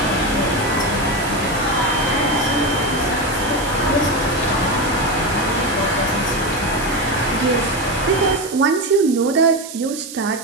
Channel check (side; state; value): right; noise; hiss, 12 dB below the sound